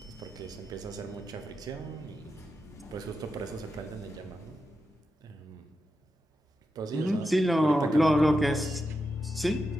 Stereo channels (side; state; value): both; normal; correlation 0.88